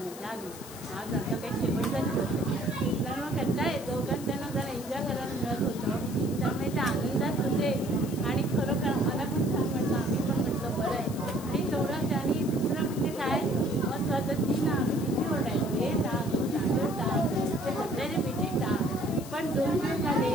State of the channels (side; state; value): left; noise; hiss, 15 dB below the sound